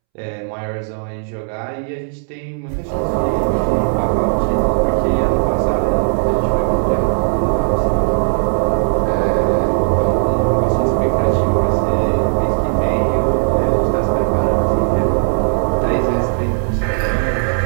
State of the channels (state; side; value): silent; left; 68 dB below the other